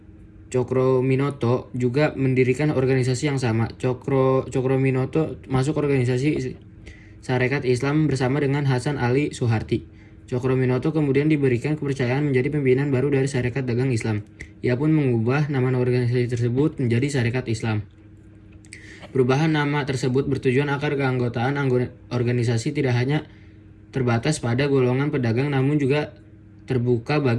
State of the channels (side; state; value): both; identical; correlation 1.00